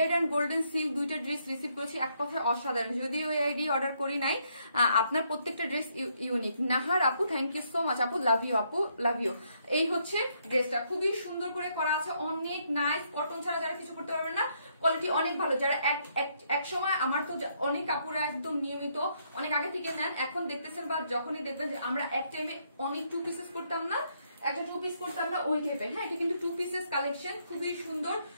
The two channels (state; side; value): inverted; both; correlation -0.73